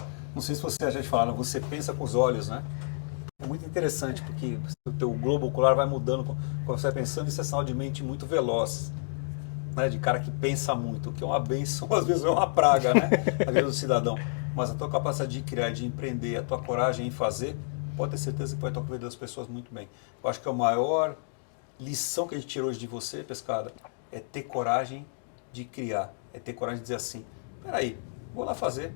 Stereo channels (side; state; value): right; silent; digital silence